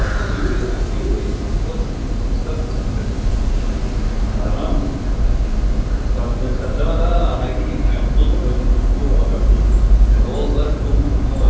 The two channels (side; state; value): both; identical; correlation 1.00